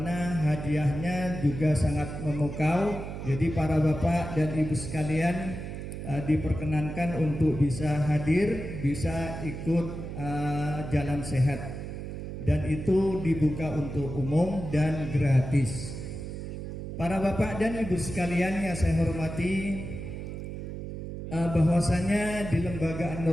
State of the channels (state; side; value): noise; right; hum, 7 dB below the sound